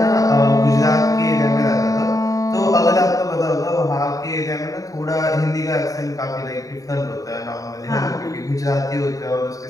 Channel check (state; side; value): late; right; 0.16 ms